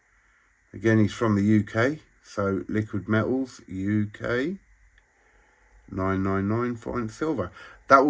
Again, he's from the UK. So Liquid Metals UK 999 fine silver. That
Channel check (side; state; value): both; identical; correlation 1.00